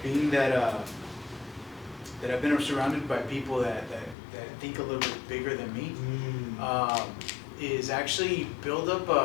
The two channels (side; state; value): right; drops out; at 4.2 s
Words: being that that I've been surrounded by people that think a little bit bigger than me, is actually build